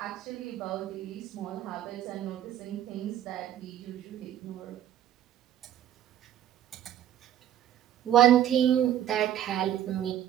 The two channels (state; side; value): quieter; left; 11.3 dB